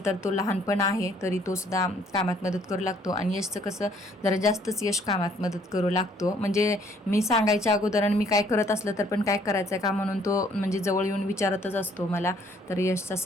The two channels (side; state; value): both; normal; correlation 0.63